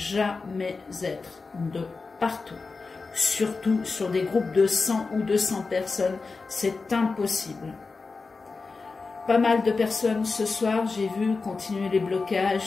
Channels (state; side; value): quieter; right; 4.2 dB